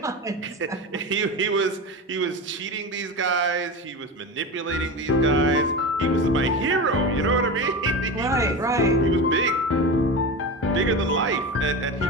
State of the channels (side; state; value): both; normal; correlation 0.24